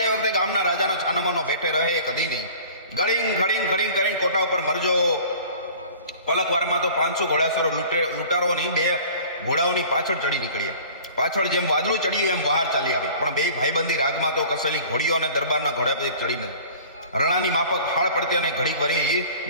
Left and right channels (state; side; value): inverted; both; correlation -0.45